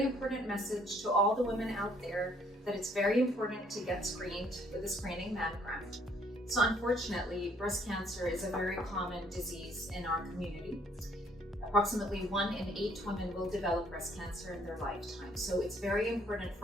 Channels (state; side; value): normal; both; correlation 0.63